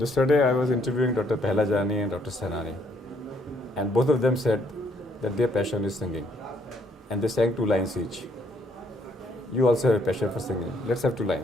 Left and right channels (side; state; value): both; normal; correlation 0.69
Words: I was interviewing Dr. Pehlajani and Dr. Sainani, and both of them said that their passion is singing, and they sang 2 lines each. You also have a passion for singing. Let's have 2